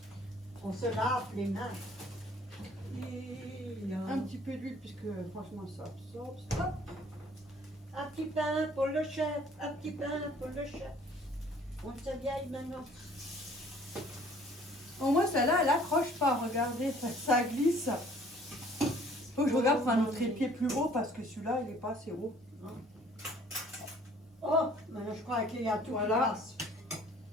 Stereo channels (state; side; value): normal; both; correlation 0.56